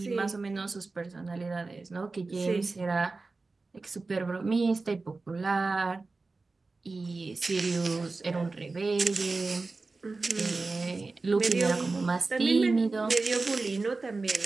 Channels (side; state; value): left; quieter; 3.7 dB